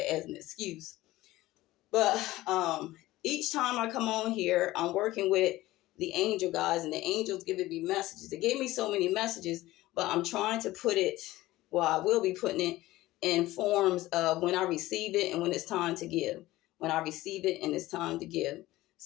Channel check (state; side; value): quieter; right; 17.3 dB